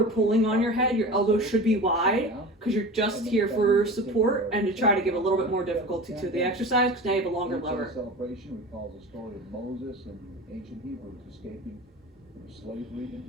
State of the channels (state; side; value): normal; both; correlation 0.32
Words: pulling on your head. Your elbows should be wide because you're just here for support and to try to give a little bit more difficulty to the exercise because now you have a longer lever. Celebration recalls the story of Moses and the ancient Hebrews escaping from slavery in